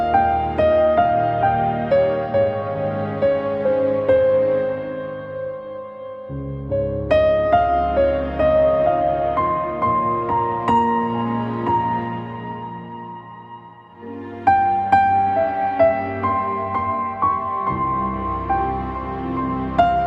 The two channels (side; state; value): both; identical; correlation 1.00